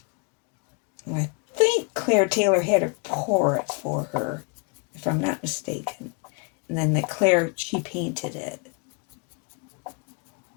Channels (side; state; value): right; quieter; 33.5 dB